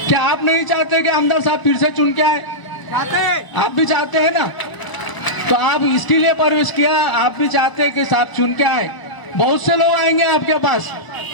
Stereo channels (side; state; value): right; late; 1.0 ms